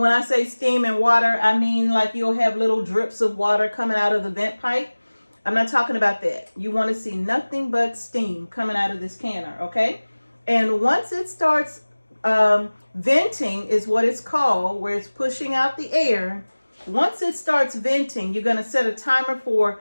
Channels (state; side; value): inverted; both; correlation -1.00